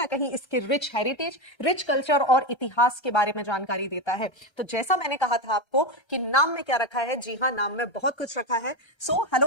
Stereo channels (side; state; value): right; late; 1.3 ms